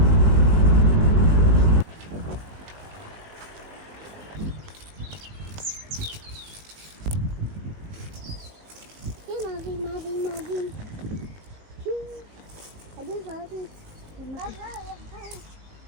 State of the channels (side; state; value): left; late; 19 ms